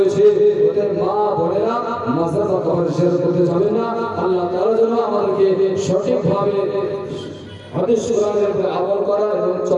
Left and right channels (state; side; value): identical; both; correlation 1.00